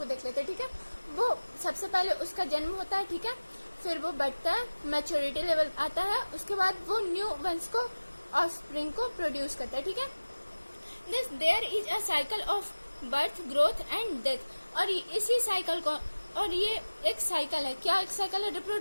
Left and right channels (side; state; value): both; inverted; correlation -1.00